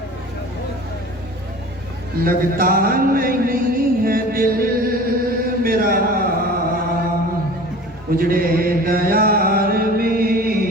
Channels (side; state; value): both; normal; correlation 0.40